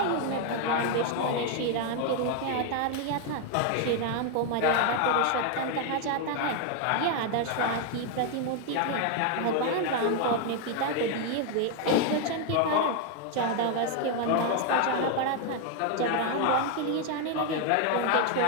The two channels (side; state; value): both; different; correlation 0.00